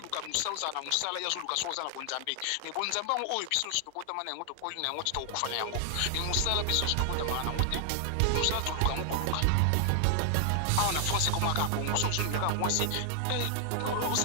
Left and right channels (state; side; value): different; both; correlation 0.00